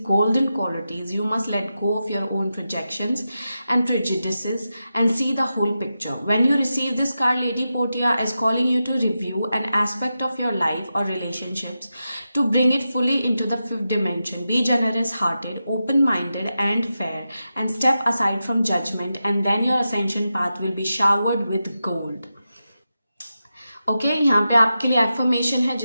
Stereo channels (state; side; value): inverted; both; correlation -0.90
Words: golden qualities, you must let go of your own projections and prejudices and see the whole picture. When you receive this card, Lady Portia is calling you to review an aspect of your life or relationships to bring it fully into the fifth dimension. Be generous hearted, open minded, and fair, and step aside from judgment, and then your ascension path will be showered with gold. Okay यहाँ पे आपके लिए एफर्मेशन है